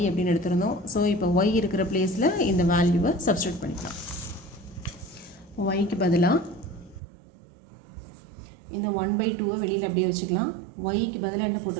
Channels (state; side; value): drops out; left; at 7.0 s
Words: அப்படின்னு எடுத்திருந்தோம். ஸோ இப்போ ஒய் இருக்கிற பிளேஸில் இந்த வேல்யூவை சப்ஸ்டியூட் பண்ணிக்கலாம். ஒய்க்கு பதிலாக இந்த 1 by 2 வெளியில் அப்படியே வச்சுக்கலாம். ஒய்க்கு பதிலாக என்ன